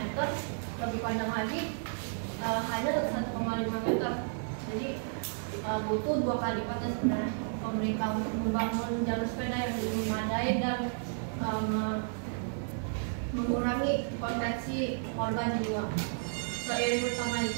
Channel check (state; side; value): silent; left; 56 dB below the other